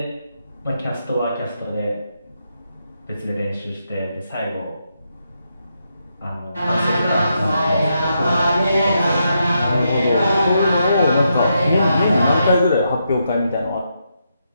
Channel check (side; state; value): both; inverted; correlation -0.82